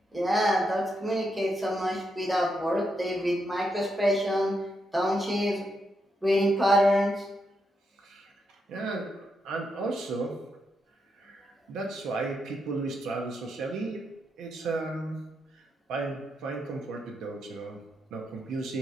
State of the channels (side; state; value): both; normal; correlation 0.82